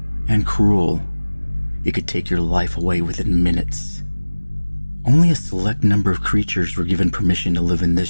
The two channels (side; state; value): both; inverted; correlation -1.00